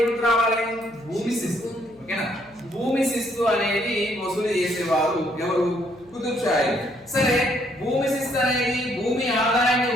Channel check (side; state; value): left; noise; hum, 29 dB below the sound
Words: గుర్తు రావాలి? భూమి శిస్తు. ఓకేనా, భూమి శిస్తు అనేది వసూలు చేసేవారు ఎవరు? కుతుబ్ షాహీ. సరే, భూమి శిస్తు అనేది భూమి ఆదాయాన్ని